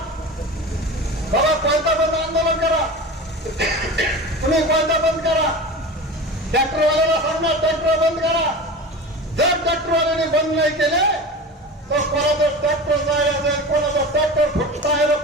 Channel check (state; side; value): normal; both; correlation 0.31